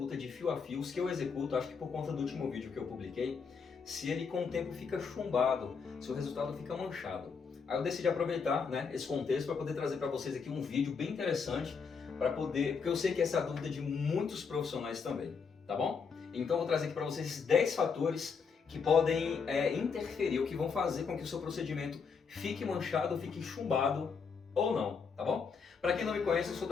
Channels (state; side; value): quieter; right; 5.6 dB